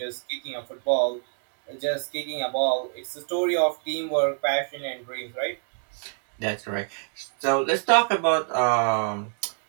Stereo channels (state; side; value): silent; left; 61 dB below the other